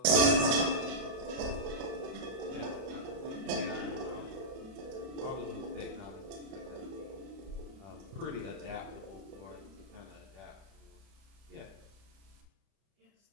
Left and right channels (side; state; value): left; late; 31 ms